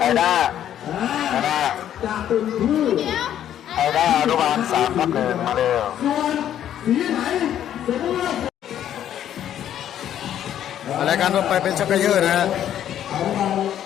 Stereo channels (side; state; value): right; quieter; 10.7 dB